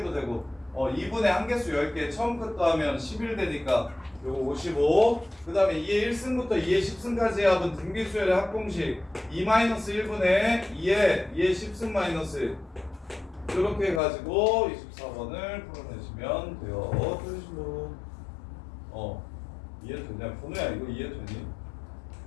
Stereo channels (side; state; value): right; drops out; at 14.0 s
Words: 되고 2분의 한개수 10개 처음 끝도 하면 11 되니까 요거 55 그 다음에 2의 1승부터 2의 10승까지의 합은 등비수열의 합공식 2-1분의 2의 10승 마이너스 이렇게 해가지고 24번을 풀어내시면 돼요. 틀리신 분 이해됐냐? 번호야 이거 이해되니?